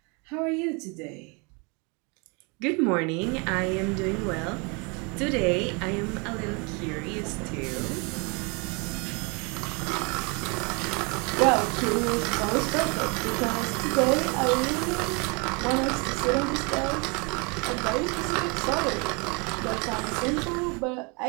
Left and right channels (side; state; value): left; quieter; 31.2 dB